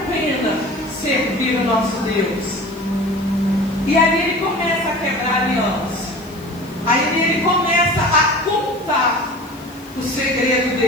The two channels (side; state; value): left; noise; hiss, 25 dB below the sound